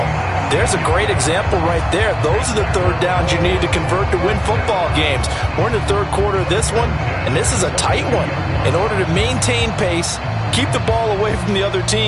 there's a great example right there. Those are the 3rd downs you need to convert to win football games. We're in the 3rd quarter of this one, and this is a tight one. In order to maintain pace, keep the ball away from the other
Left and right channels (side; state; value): both; identical; correlation 1.00